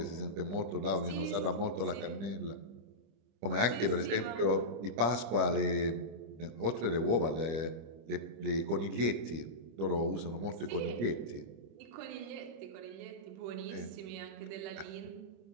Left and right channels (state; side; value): late; left; 25 ms